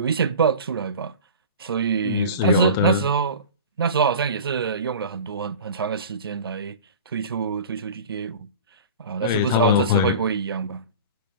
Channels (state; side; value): inverted; both; correlation -0.36